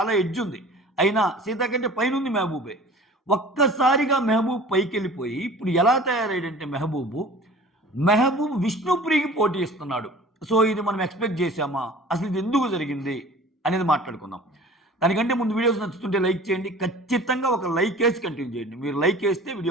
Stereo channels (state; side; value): normal; both; correlation 0.44